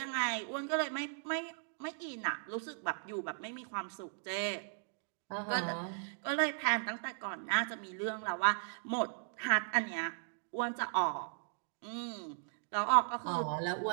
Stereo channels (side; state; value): left; silent; digital silence